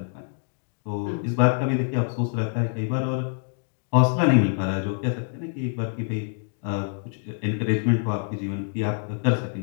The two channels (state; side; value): silent; right; 61 dB below the other